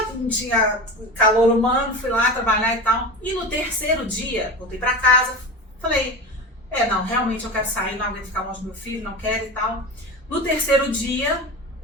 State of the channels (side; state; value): both; normal; correlation 0.28